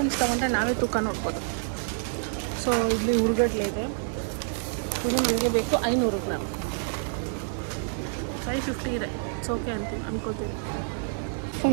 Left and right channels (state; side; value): silent; left; digital silence